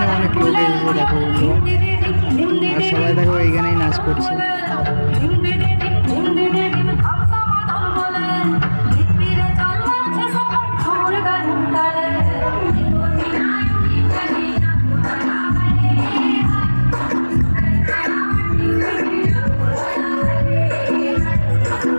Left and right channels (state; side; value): inverted; both; correlation -1.00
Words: অনেক লোক এসেছে দেখো বন্ধুরা, আর সবাই দেখো এইখানেই নাচ করছে।